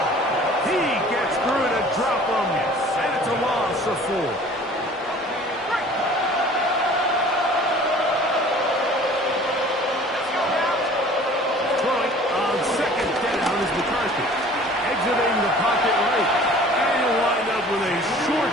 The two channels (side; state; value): both; normal; correlation 0.48